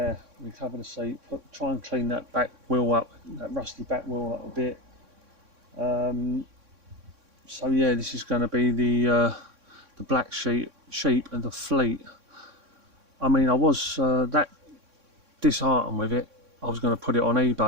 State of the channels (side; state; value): left; late; 3.6 ms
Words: recover the seat, try and clean that back wheel up, that rusty back wheel up a bit. So yeah, this is going to be the black sheep and the fleet. I mean, I was that disheartened with it. I was going to put it on